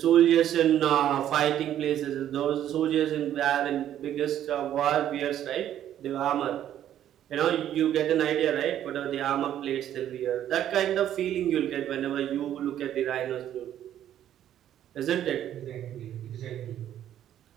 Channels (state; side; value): quieter; left; 11.1 dB